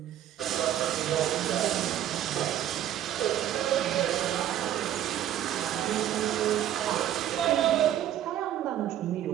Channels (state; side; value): quieter; left; 11.6 dB